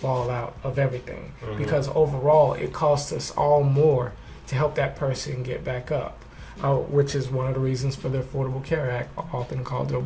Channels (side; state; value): both; identical; correlation 1.00